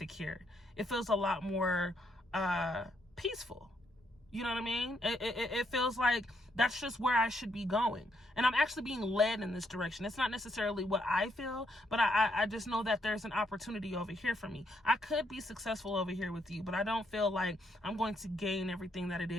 It feels a lot more peaceful. You know what I mean? It feels like that's just where I should be going. And I'm actually being led in this direction. It's not necessarily what I feel, but I just know that there's an opportunity over here for me. I could be successful over here with you, but I don't feel like I'm going to gain everything that it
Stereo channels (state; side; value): normal; both; correlation 0.75